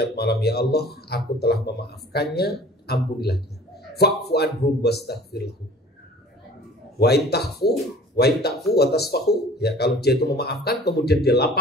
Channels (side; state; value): both; normal; correlation 0.47